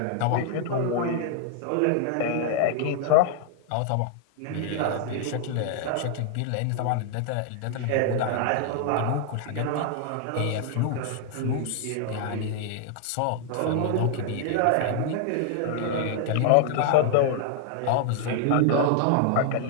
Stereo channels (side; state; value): both; different; correlation 0.00